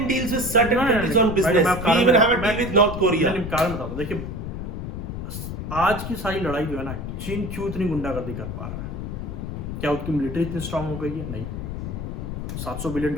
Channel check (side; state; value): left; noise; rumble, 6 dB below the sound